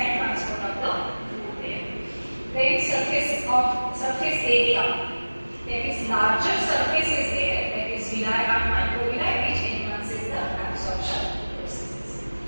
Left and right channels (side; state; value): both; inverted; correlation -1.00